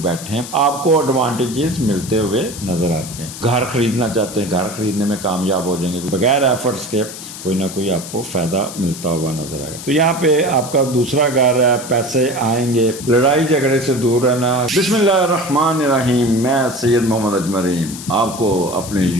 بیٹھے ہیں آپ کو ایڈوانٹیجز ملتے ہوئے نظر آتے ہیں. گھر خریدنا چاہتے ہیں, گھر خریدنے میں کامیاب ہو جائیں گے, بغیر ایفرٹس کے کوئی نہ کوئی آپ کو فائدہ ملتا ہوا نظر آئے گا. تو یہاں پہ آپ کا دوسرا گھر ہے, پیسے آئیں گے, لڑائی جھگڑے سے دور رہنا. بسم اللہ الرحمن الرحیم. میں سید محمد اجمرین آپ کو اپنے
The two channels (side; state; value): left; noise; hiss, 12 dB below the sound